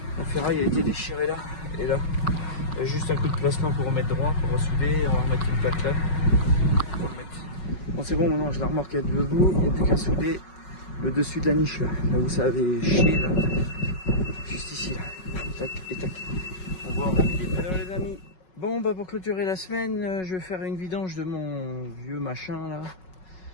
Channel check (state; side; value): late; right; 5.4 ms